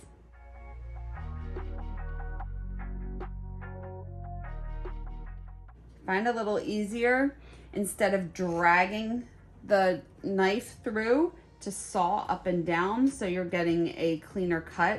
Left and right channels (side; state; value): both; identical; correlation 1.00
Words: Find a little easier, instead of dragging the knife through, to saw up and down so you're getting a cleaner